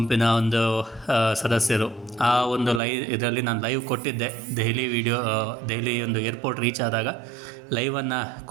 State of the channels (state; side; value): drops out; left; at 2.8 s